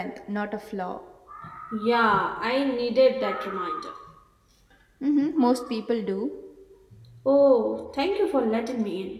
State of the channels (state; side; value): identical; both; correlation 1.00